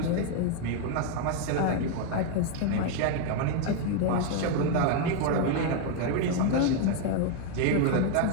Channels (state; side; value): different; both; correlation 0.01